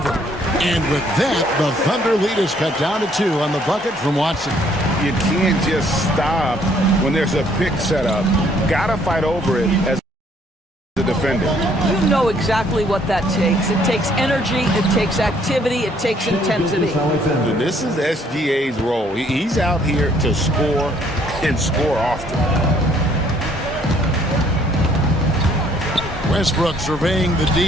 And with that, the Thunder lead is cut down to 2 on the bucket from Watson. You can't just stop when there's a pick set up. Gotta fight over it as a defender. You know exactly what that takes. It takes energy, it takes activity, it takes intensity. And this is SGA's role. He's out here to score and score often. Westbrook surveying the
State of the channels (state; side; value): normal; both; correlation 0.64